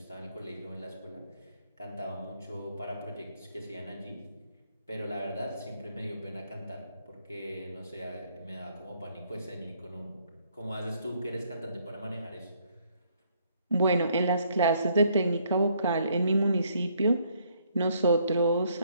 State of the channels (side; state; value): both; inverted; correlation -0.68